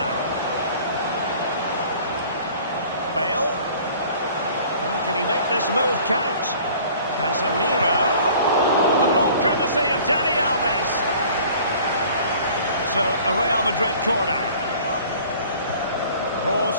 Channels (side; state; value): both; inverted; correlation -0.50